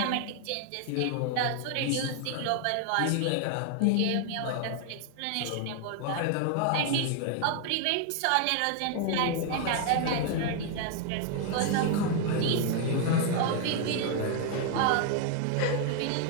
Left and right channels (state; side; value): different; both; correlation 0.00